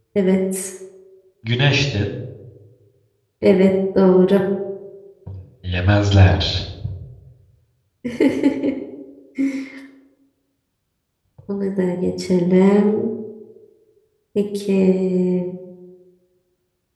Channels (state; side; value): identical; both; correlation 1.00